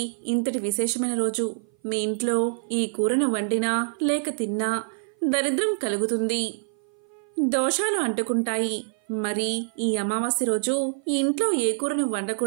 ఇంతటి విశేషమైన రోజు మీ ఇంట్లో ఈ కూరను వండినా లేక తిన్నా దరిద్రం కలుగుతుంది, దోషాలు అంటుకుంటాయి. మరి ఈ అమావాస్య రోజు ఇంట్లో ఏ కూరను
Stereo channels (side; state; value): left; silent; 57 dB below the other